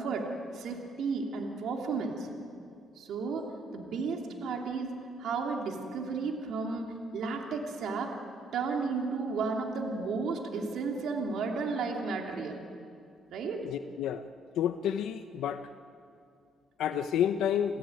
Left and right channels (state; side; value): normal; both; correlation 0.60